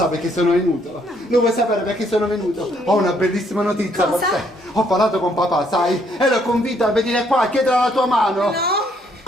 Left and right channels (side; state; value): both; normal; correlation 0.69